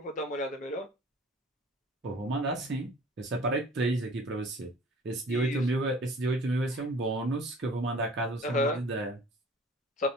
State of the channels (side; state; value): both; normal; correlation 0.48